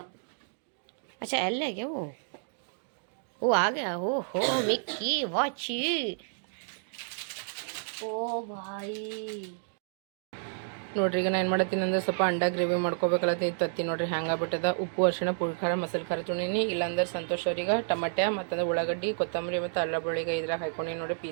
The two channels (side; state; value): left; silent; digital silence